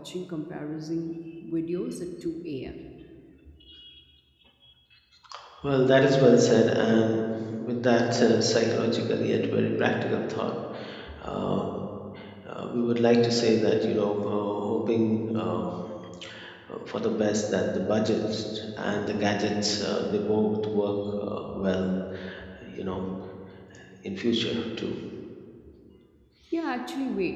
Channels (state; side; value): identical; both; correlation 1.00